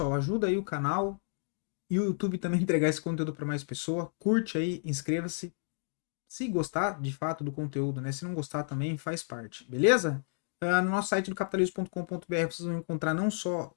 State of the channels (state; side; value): silent; right; digital silence